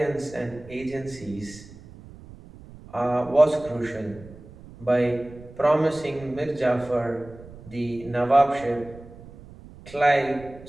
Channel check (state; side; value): noise; right; rumble, 19 dB below the sound